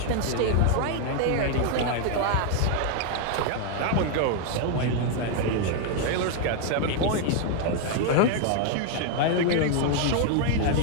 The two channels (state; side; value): different; both; correlation 0.00